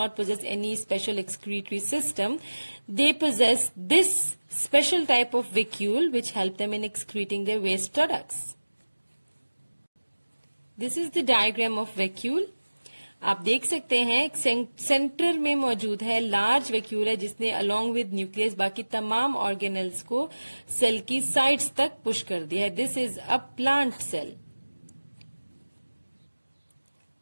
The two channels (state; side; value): inverted; both; correlation -1.00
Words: not possess any special excretory system, they possess this special type of vacuole which help them in excreting their waste products. This is the diagram of vacuole. आप देख सकते हैं एक centre में मौजूद है large vacuole है जिसने अलोंग विद न्यूक्लियस बाकी तमाम ऑर्गेनल्स को सेल की साइड्स तक पुश कर दिया है. This is a plant cell.